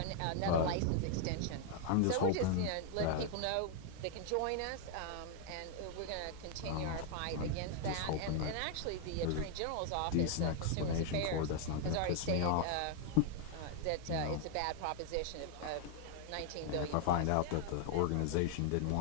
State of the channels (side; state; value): both; different; correlation 0.00